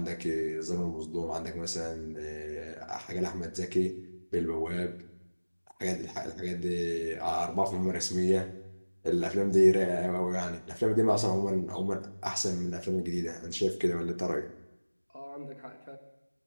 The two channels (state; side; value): inverted; both; correlation -1.00